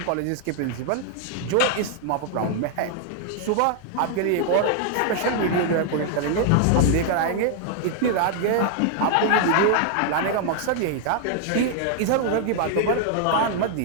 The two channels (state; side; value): different; both; correlation 0.00